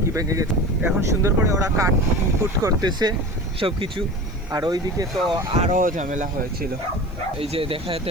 কি ভেঙে গেছে। এখন সুন্দর করে ওরা কাটকুট করতেছে সব কিছু। আর ওইদিকে তো আরও ঝামেলা হয়েছিল, এই যে দেখাতে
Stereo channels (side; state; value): left; noise; hiss, 30 dB below the sound